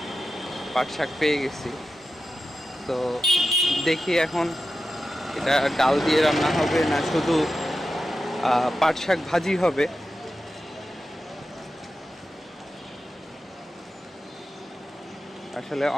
পাট শাক পেয়ে গেছি। তো দেখি এখন এটা ডাল দিয়ে রান্না হবে না শুধু পাট শাক ভাজি হবে। আসলে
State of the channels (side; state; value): both; normal; correlation 0.92